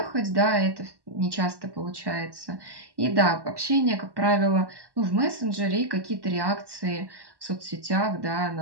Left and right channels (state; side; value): late; left; 1.1 ms